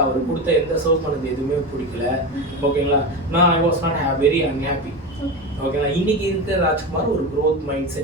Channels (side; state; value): both; normal; correlation 0.21